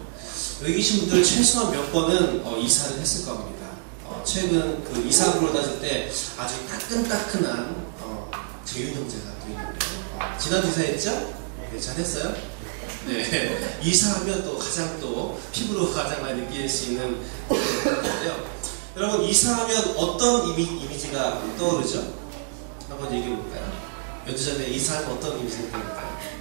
여기 계신 분들 최소한 몇 번은 이사를 했을 겁니다. 최근 그 이사부로 따질 때 아주 따끈따끈한 재윤 형제가 또 있는데요. 지난주 이사했죠? 네, 잘했어요? 네. 이사하면 또 가장 또 피부로 가장 많이 느낄 수 있는 건데요. 여러분 이사하면 어떤 이미지가 떠오르죠? 한번 얘기해 볼까요? 몇 주 전에 이사하면 어떤 이미지가 떠오를까요?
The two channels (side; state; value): left; silent; digital silence